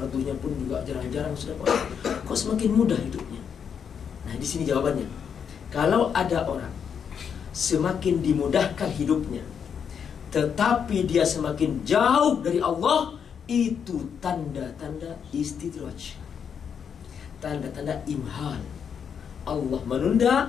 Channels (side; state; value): right; quieter; 7.3 dB